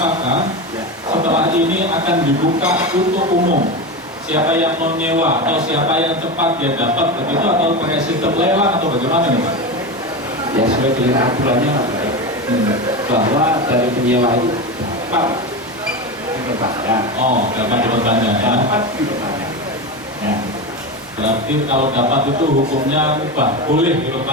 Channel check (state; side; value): normal; both; correlation 0.20